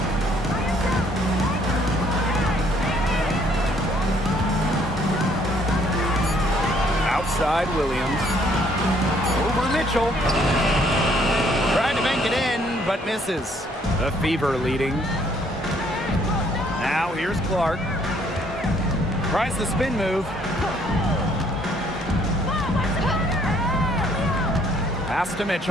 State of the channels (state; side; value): normal; both; correlation 0.64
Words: Outside Williams. Over Mitchell. Tried to bank it in, but misses. The Fever leading. Now here's Clark. Tries the spin move. Pass to